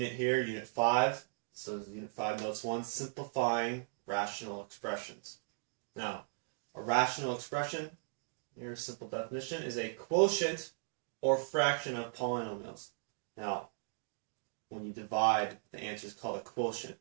here, Unit 5. So Unit 5 Notes 1, Simplifying Rational Expressions. Now, a rational expression, here's a simple definition, is a quotient or fraction of polynomials. Now, when you divide, the answer is called a quotient,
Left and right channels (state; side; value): silent; left; digital silence